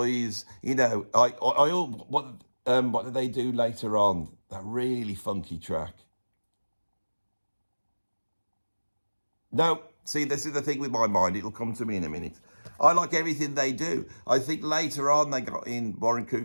what did they do later on? That really funky track. No, see, this is the thing with my mind. It'll come to me in a minute. I like everything they do. I think later on they got in Warren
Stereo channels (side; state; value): both; inverted; correlation -1.00